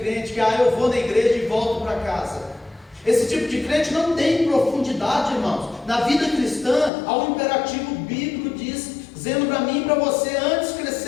crente que eu vou na igreja e volto para casa. Esse tipo de crente não tem profundidade, irmãos. Na vida cristã há um imperativo bíblico dizendo para mim e para você, antes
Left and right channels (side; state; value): right; drops out; at 6.9 s